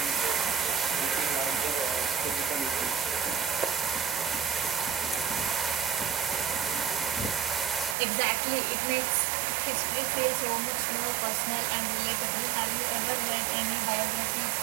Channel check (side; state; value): left; drops out; at 8.0 s